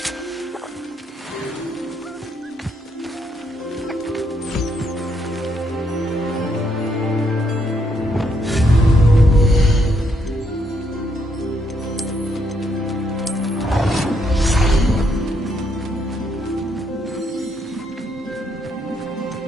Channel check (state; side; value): normal; both; correlation 0.75